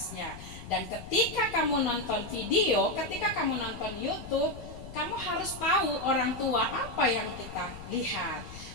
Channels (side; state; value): left; noise; rumble, 14 dB below the sound